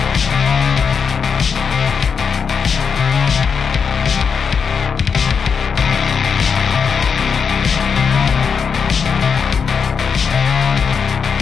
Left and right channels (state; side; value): quieter; right; 6.2 dB